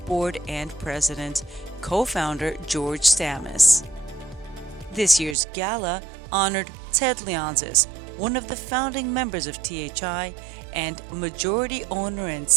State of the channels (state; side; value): drops out; left; at 5.4 s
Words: Board and President, Co-founder George Stamis. This year's gala honored Ted Leonsis, one of the founding members of THI and majority owner and